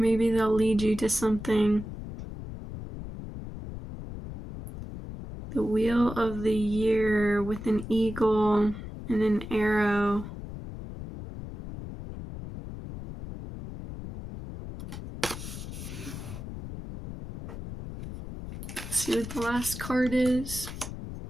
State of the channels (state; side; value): noise; left; rumble, 10 dB below the sound